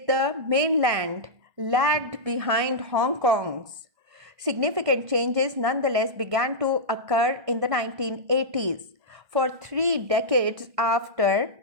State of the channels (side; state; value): left; late; 1.6 ms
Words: the mainland lagged behind Hong Kong's. Significant changes nonetheless began to occur in the 1980s. For 3 decades